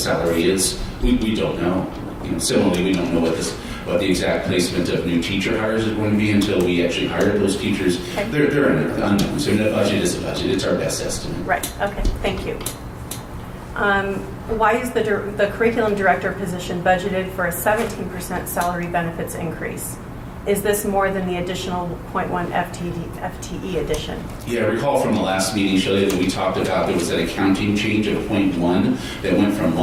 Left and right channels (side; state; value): both; identical; correlation 1.00